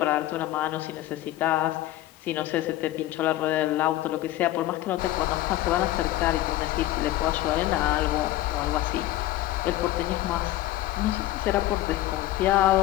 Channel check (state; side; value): quieter; right; 15.3 dB